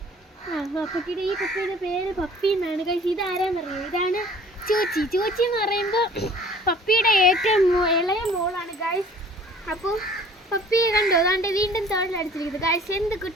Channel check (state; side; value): normal; both; correlation 0.51